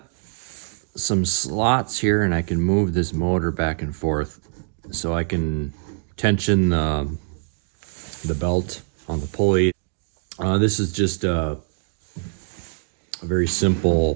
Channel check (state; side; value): silent; left; 63 dB below the other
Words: some slots here and I can move this motor back and forth so I can tension the belt on the pulley. This is just a very